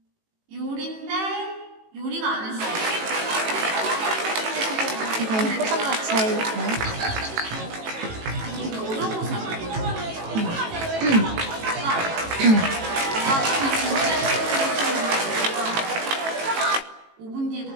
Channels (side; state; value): left; late; 18 ms